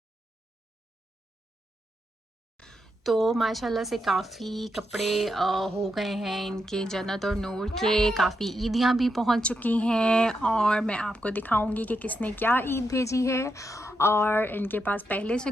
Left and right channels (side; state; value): both; normal; correlation 0.84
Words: तो माशाल्लाह से काफ़ी कपड़े हो गए हैं इनके। जन्नत और नूर के काफ़ी ईदियाँ भी पहुंच चुकी हैं और मैं आपको दिखाऊंगी कि किसने क्या ईद भेजी है और इनके पास पहले से